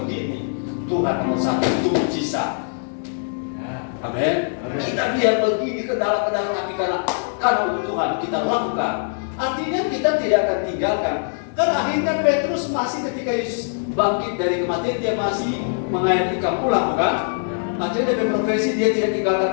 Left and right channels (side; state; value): right; silent; digital silence